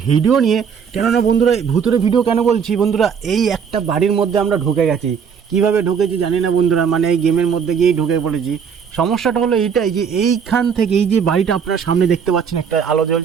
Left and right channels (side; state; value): left; quieter; 6.9 dB